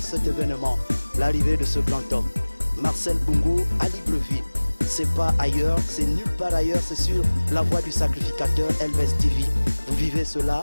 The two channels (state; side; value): inverted; both; correlation -1.00